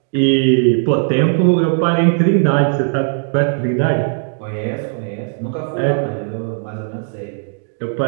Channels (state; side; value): silent; left; digital silence